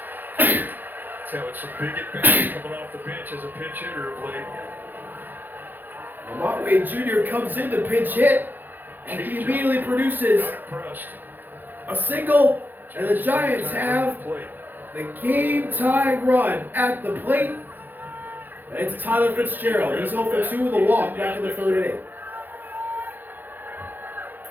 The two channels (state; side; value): late; left; 0.089 ms